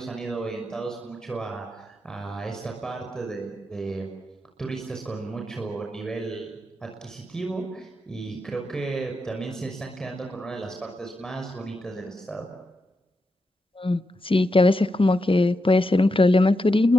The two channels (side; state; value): both; normal; correlation 0.85